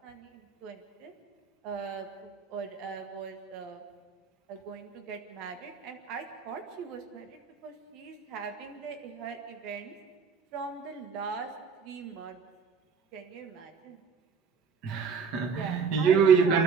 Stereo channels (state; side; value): quieter; left; 5.9 dB